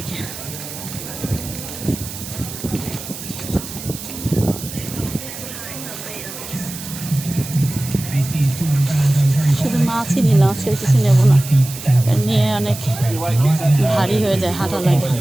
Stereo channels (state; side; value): noise; right; hiss, 11 dB below the sound